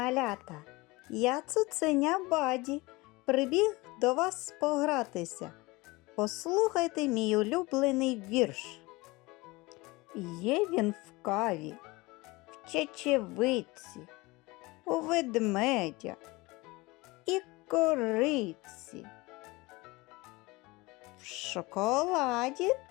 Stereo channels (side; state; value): right; quieter; 22.8 dB